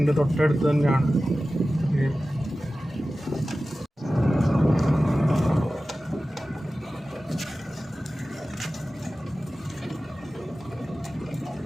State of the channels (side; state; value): both; normal; correlation 0.95